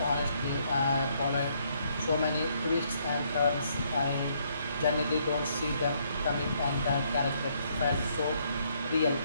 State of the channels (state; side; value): inverted; both; correlation -0.70